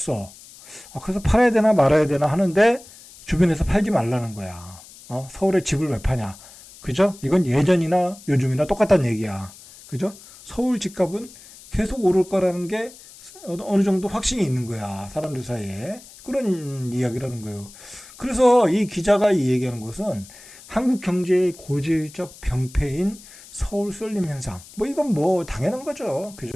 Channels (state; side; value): noise; left; hiss, 20 dB below the sound